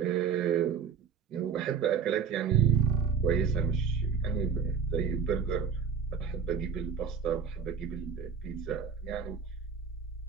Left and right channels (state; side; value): quieter; left; 6.7 dB